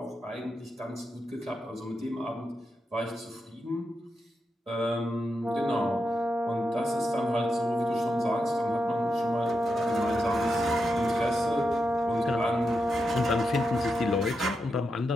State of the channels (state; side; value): normal; both; correlation 0.86